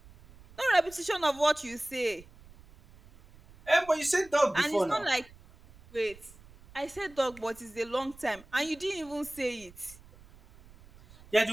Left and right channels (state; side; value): noise; right; rumble, 23 dB below the sound